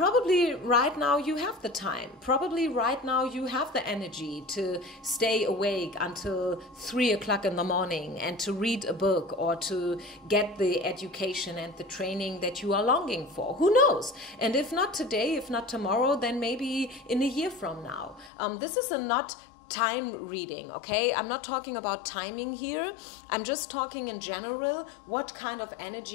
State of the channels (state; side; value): drops out; right; at 18.3 s